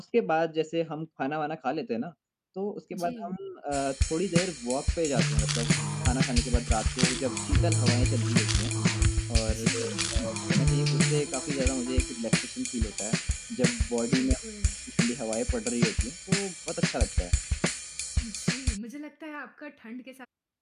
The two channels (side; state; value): both; identical; correlation 1.00